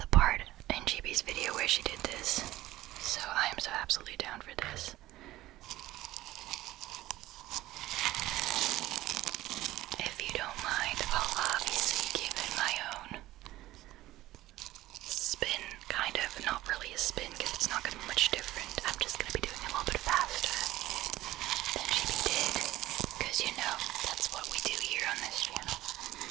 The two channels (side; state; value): left; quieter; 16.1 dB